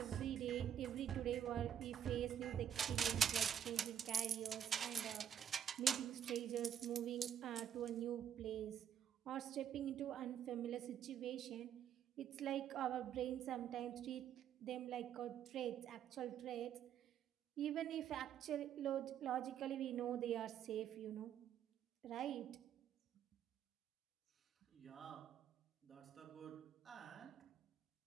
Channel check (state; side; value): quieter; left; 9.3 dB